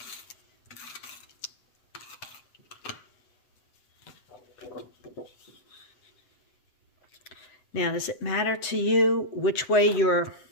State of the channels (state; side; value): late; right; 7.9 ms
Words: Now, does it matter to you which way your